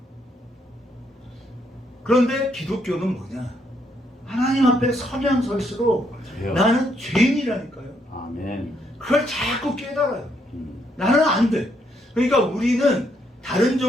그런데 기독교는 뭐냐? 하나님 앞에 서면 설수록 돼요. 나는 죄인이라니까요. 아멘. 그걸 자꾸 깨달아요. 나는 안 돼. 그러니까 우리는 다른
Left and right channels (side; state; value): both; normal; correlation 0.74